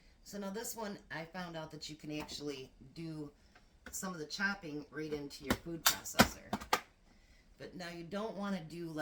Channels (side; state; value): both; identical; correlation 1.00